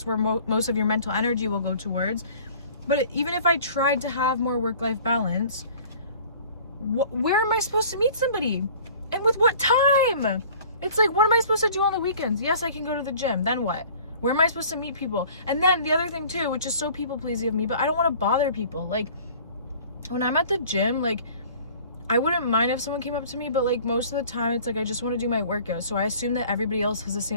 where most of your mental energy will go towards. But even if I tried to have more work-life balance, where am I supposed to meet somebody? And with what time? It's like, what am I supposed to do on the weekends? Yes, I can go to the gym. Then what? Where am I supposed to meet people? And then the other thing too, which is so people-pleasing of me, but I don't want to bother people. Like, when I'm at the gym, like, I wouldn't mind if someone came up to me, but like, most of the time it's like, I just want to do my workout. So I assume that everybody else has the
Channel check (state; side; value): inverted; both; correlation -0.48